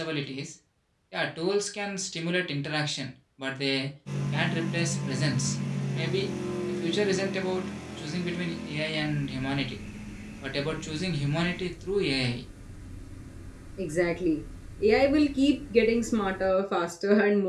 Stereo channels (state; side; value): identical; both; correlation 1.00